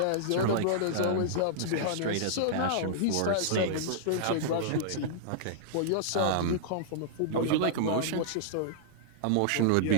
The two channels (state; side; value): different; both; correlation -0.02